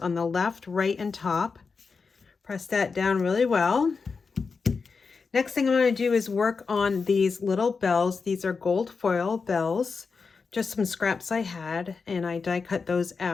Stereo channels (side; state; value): right; quieter; 4.9 dB